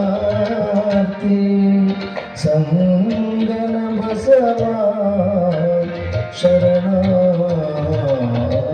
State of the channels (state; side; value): identical; both; correlation 1.00